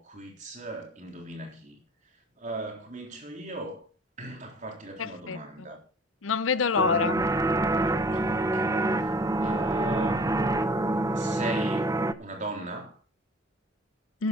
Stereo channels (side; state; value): both; normal; correlation 0.45